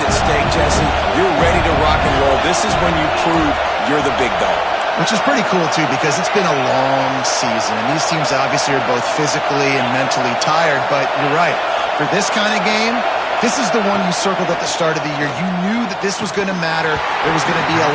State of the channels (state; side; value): identical; both; correlation 1.00